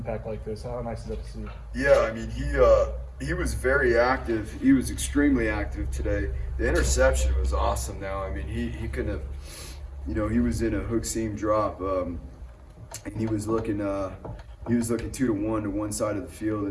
like this, how nice is that to see? Yeah, I mean, he was very active. He was extremely active today. The interception was awesome. Now, I mean, he couldn't have. He was in a hook seam drop, and he was looking 2 to 1 to one side of the field,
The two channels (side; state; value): both; identical; correlation 1.00